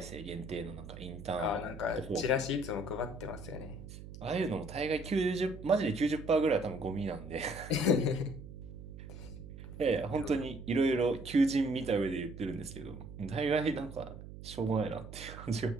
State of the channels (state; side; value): noise; right; hum, 13 dB below the sound